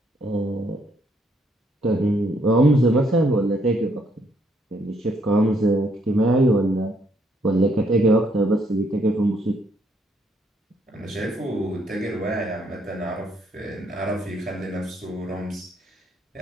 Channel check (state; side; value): normal; both; correlation 0.71